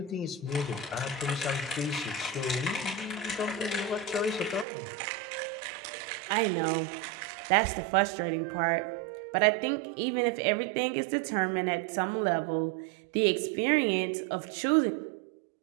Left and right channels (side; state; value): left; drops out; at 4.7 s